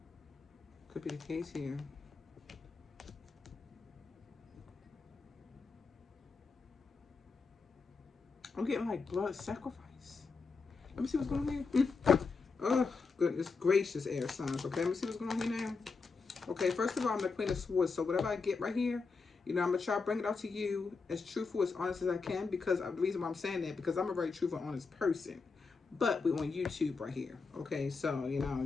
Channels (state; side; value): quieter; right; 4.6 dB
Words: Could be the case here. I'm getting like blood sacrifice. Let me see what's going on here. Oh, goodness gracious, air signs. Okay, let me see what's going on here now. Okay, first of all, I'm the Queen of Swords. So whatever I get right here, I'm going to try to bring it out to you as truthful, as honest as I can. Because the reason why I'm saying that, because I'm a very truthful, honest person. But we're on YouTube right here. Okay, so, you